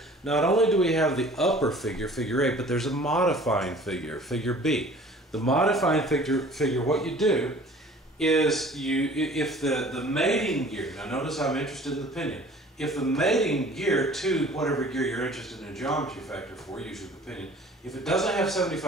not only do we have the upper figure, figure A, but there's a modifying figure, figure B. The modifying figure, what you do is if the mating gear, now notice I'm interested in the pinion, if the mating gear to whatever gear you're interested in a geometry factor for, usually the pinion, if it doesn't have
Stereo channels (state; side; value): normal; both; correlation 0.48